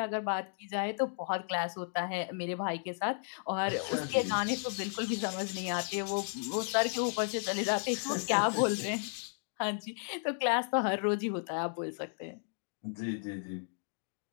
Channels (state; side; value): silent; right; digital silence